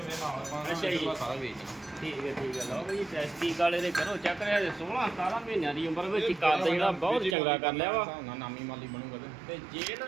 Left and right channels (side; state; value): left; drops out; at 7.4 s